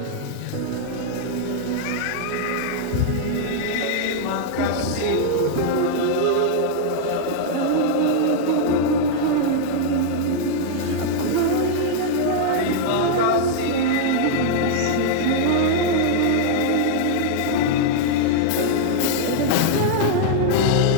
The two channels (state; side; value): different; both; correlation -0.01